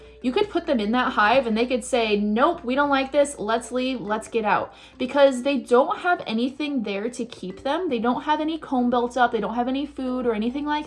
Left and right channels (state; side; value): identical; both; correlation 1.00